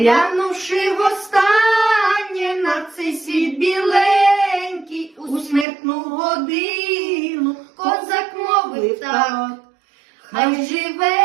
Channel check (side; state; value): left; drops out; at 5.7 s